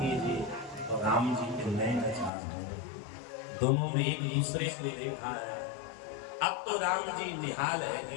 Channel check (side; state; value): right; drops out; at 2.3 s